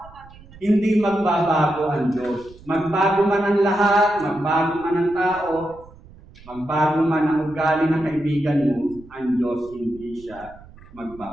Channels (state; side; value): noise; right; rumble, 22 dB below the sound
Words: natin, hindi magbabago ang Diyos. Magbago man ang lahat, magbago man ang tao, magbago man ang ugali ng kaibigan mo, ang Diyos hindi siya